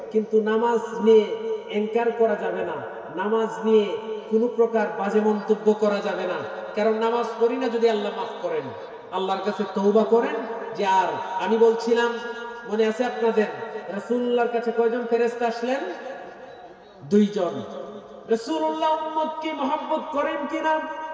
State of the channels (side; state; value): both; identical; correlation 1.00